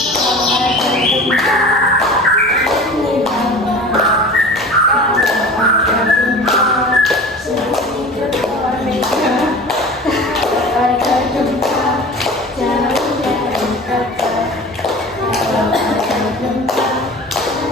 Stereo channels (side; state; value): both; normal; correlation 0.37